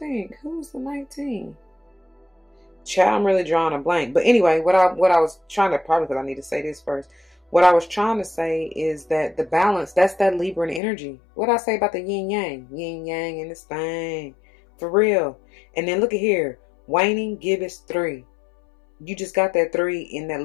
Who was the 19? Child, I'm really drawing a blank. But anyway, what I was trying to, probably because I need to say this first. What I was trying to say is that the balance, that's that Libran energy. What I say about the yin yang? Yin yang in this thing. For real. And then look at here. Waning gibbous 3. You just got that 3 in that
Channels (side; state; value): right; drops out; at 10.8 s